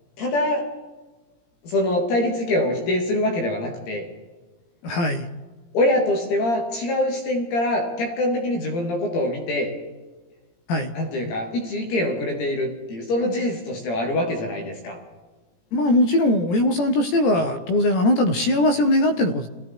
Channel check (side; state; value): right; late; 17 ms